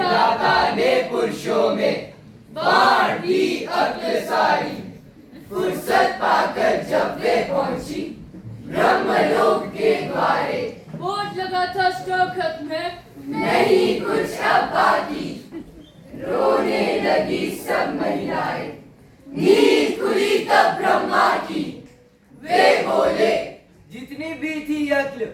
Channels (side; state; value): both; identical; correlation 1.00